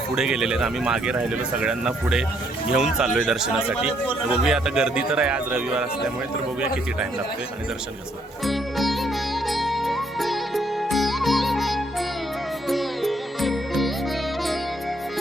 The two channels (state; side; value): normal; both; correlation 0.70